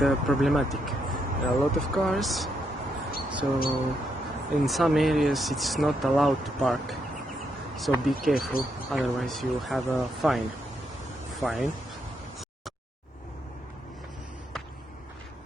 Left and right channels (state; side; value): normal; both; correlation 0.78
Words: problematic. There are a lot of cars, so in some areas it's not allowed to park. So be careful, otherwise you have a fine.